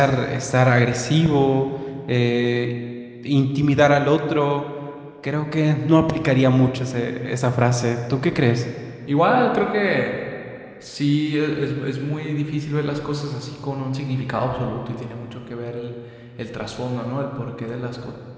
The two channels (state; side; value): identical; both; correlation 1.00